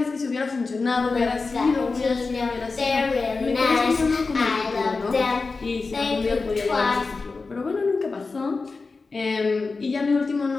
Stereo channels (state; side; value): quieter; right; 4.1 dB